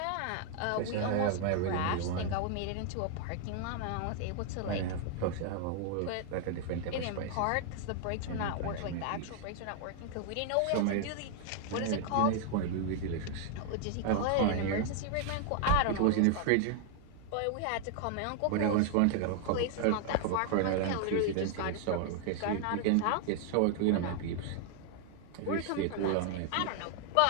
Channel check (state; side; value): different; both; correlation 0.00